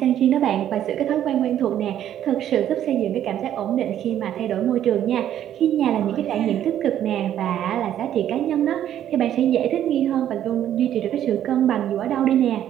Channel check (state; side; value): quieter; left; 11.0 dB